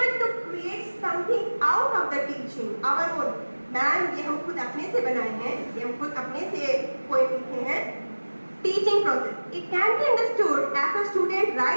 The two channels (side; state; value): both; inverted; correlation -1.00